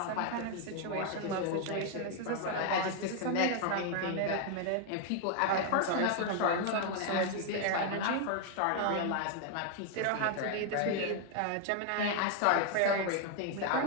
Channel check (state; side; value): different; both; correlation 0.00